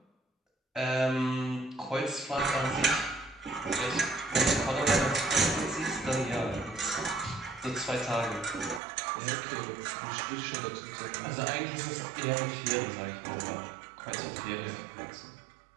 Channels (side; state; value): left; drops out; at 8.8 s